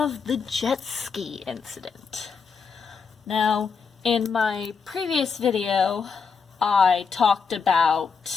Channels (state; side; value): quieter; right; 5.6 dB